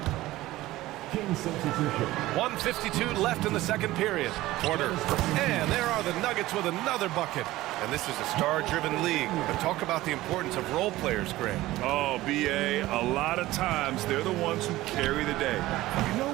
1:52 left in the second period. Porter. And there are the Nuggets with another bucket. And this is a star-driven league. But talk about the importance of role players, Grant. Oh, B.A., a lot of times they're the ones who carry the day. You know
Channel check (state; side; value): quieter; left; 17.0 dB